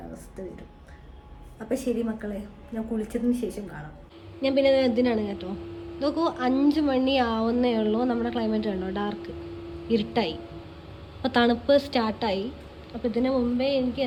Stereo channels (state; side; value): identical; both; correlation 1.00